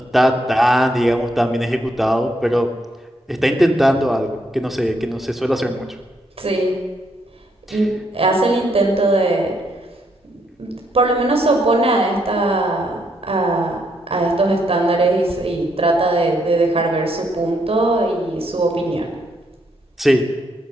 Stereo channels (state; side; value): normal; both; correlation 0.75